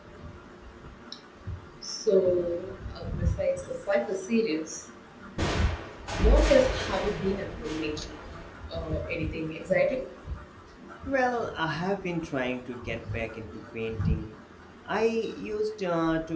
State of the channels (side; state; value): both; identical; correlation 1.00